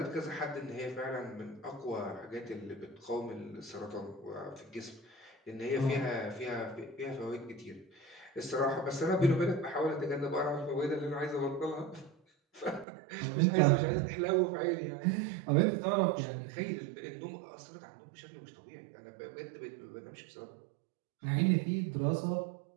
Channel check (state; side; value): drops out; left; at 12.9 s